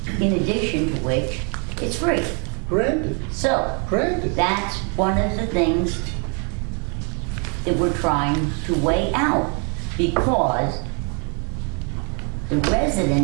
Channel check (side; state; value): left; quieter; 36.9 dB